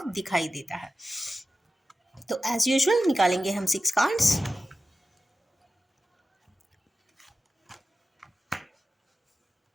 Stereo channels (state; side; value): normal; both; correlation 0.94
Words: दिखाई देता है। तो एज यूजुअल निकालेंगे हम 6 कार्ड्स।